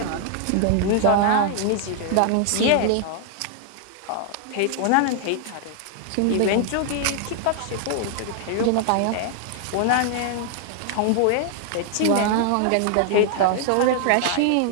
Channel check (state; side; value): different; both; correlation 0.00